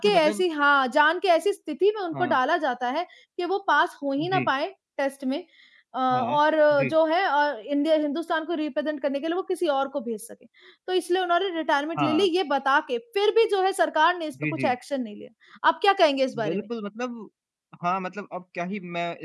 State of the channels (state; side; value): identical; both; correlation 1.00